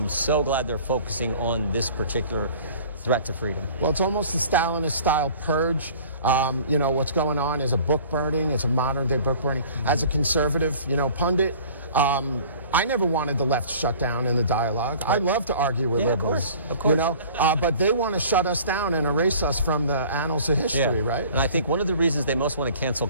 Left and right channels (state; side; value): inverted; both; correlation -0.47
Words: so glad they're focusing on this particular threat to freedom. Well, it's almost a Stalinist-style purge. What's going on is a book burning. It's a modern-day book burning. As a conservative, pundit, I never wanted the left shut down in the dialogue. I love to argue with liberals. Of course. But they want to shut us down and erase us from the annals of history, right? And I think one of the reasons they most want to cancel